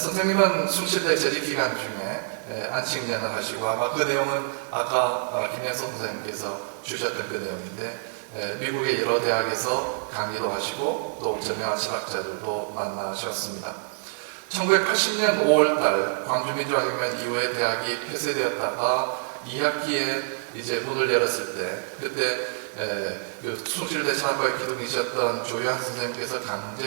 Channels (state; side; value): silent; left; digital silence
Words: 숭실대 재직기간 중에 안식년을 하시고 아마 그 내용은 아까 김혜선 선생님께서 주셨던 그 내용인데 미국의 여러 대학에서 강의도 하시고 또 저명한 철학자들도 만나셨습니다. 1980년 5월달 광주민주화혁명 이후에 대학이 폐쇄되었다가 2학기에 이제 문을 열었을 때 그때 그 숭실대 철학과에 기둥이셨던 조효한 선생님께서